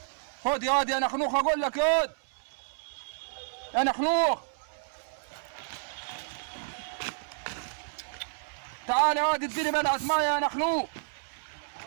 خد يا واد يا نخنوخ، اقول لك يا واد يا نخنوخ. تعال يا واد اديني بلعة ميه يا نخنوق.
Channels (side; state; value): left; silent; 58 dB below the other